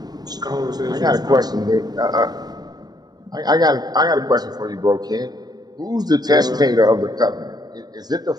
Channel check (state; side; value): late; left; 0.19 ms